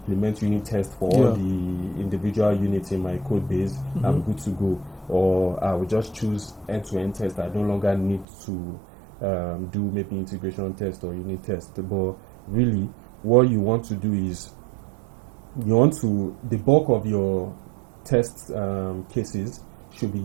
unit test for all the individual units in my code base, I'm good to go. Or I will just choose end-to-end test. I no longer need to do maybe integration test or unit test. But really, what you want to do is, the bulk of your test cases should be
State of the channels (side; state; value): left; drops out; at 8.2 s